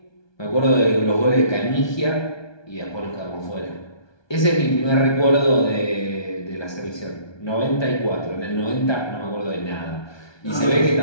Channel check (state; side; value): late; right; 1.2 ms